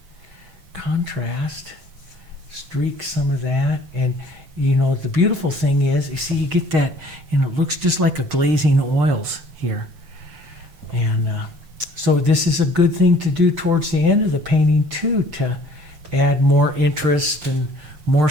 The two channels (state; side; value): late; left; 8.0 ms